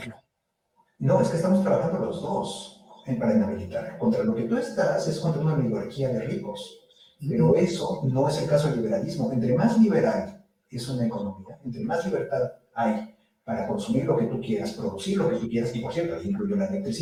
No, es que estamos trabajando los dos para inhabilitar. Contra lo que tú estás es contra una oligarquía de ricos, pero eso no es el caso del liberalismo. Entre más liberal es una economía, entre más libertad hay para consumir lo que tú quieras, producir lo que tú quieras, y por cierto, ahí incluyo la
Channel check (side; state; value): both; identical; correlation 1.00